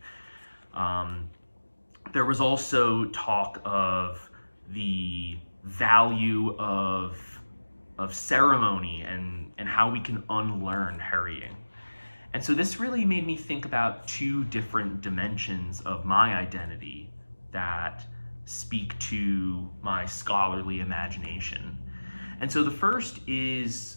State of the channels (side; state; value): both; inverted; correlation -1.00